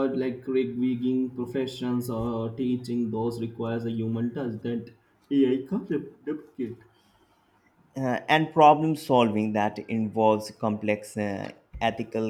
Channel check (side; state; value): both; identical; correlation 1.00